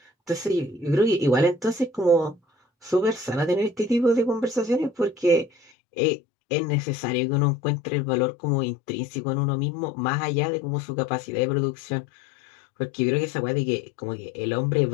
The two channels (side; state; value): right; drops out; at 5.7 s